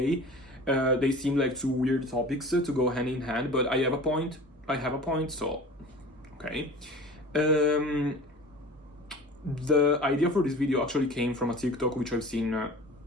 They seem like two weird topics to go hand in hand, but I have a point, so, okay. The idea for this video actually came from a TikTok which I've seen a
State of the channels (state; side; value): normal; both; correlation 0.40